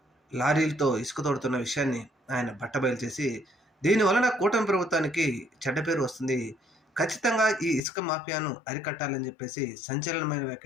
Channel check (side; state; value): right; drops out; at 7.8 s